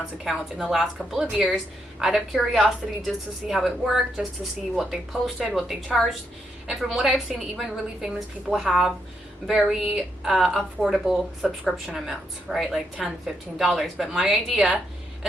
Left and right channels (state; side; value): normal; both; correlation 0.79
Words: accounts in the last couple of years out of curiosity, just to see how it worked, just to see what they posted, what they charged. And from what I've seen, even really famous people have very affordable subscription amounts, right? Like $10, $15. But my idea